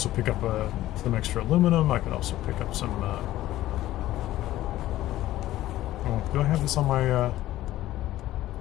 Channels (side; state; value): right; quieter; 14.9 dB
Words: pick up some extra aluminum. I could also pick up some... oh, do I have this on my...